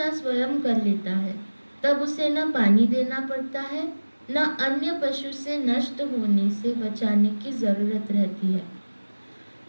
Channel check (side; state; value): both; inverted; correlation -1.00